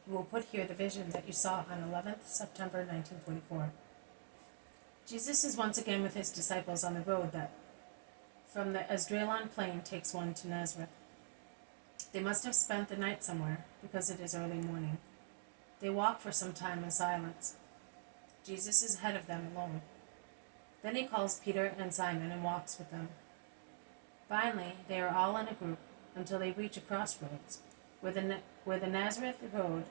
"You will put here the vision that you saw on 11th September 1944. Jesus is once again with his disciples on the road that from the Esdraelon plain takes one to Nazareth. They must have spent the night somewhere, because it is early morning. They walk for some time in silence. Jesus is ahead of them alone. Then he calls Peter and Simon and walks with them. Finally, they are all in a group until they reach a crossroads, where the Nazareth road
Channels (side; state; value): left; silent; digital silence